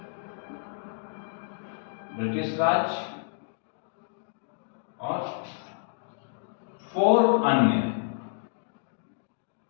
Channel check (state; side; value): silent; right; digital silence